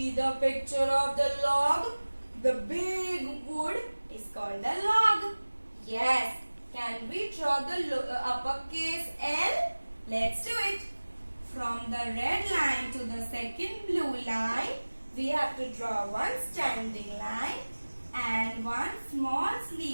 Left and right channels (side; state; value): both; inverted; correlation -1.00